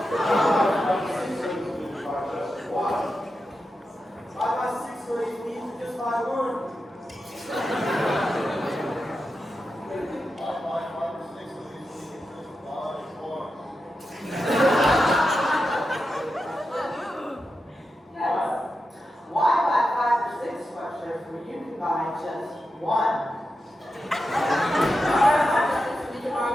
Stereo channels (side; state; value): both; normal; correlation 0.89